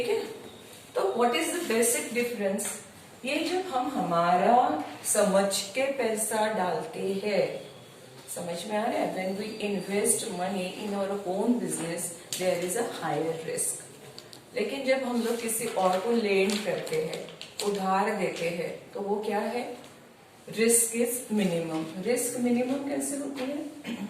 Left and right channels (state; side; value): identical; both; correlation 1.00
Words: है. तो what is the basic difference? ये जब हम हमारा समझ के पैसा डालते हैं, समझ में आ रहा है? When we invest money in our own business there is a higher risk. लेकिन जब हम लोग किसी और को लेंड करते हैं, उधार देते हैं, तो वो क्या है? Risk is minimum. Risk minimum कैसे होती है?